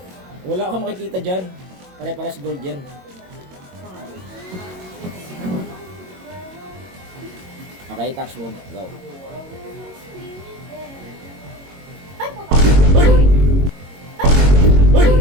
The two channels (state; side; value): late; left; 22 ms